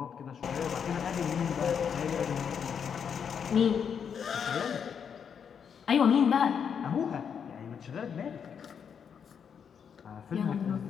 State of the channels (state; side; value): quieter; right; 7.3 dB